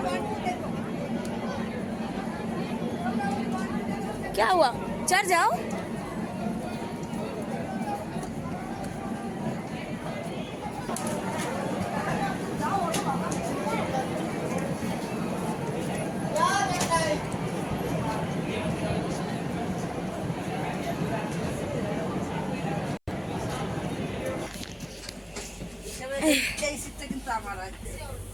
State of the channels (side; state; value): both; identical; correlation 1.00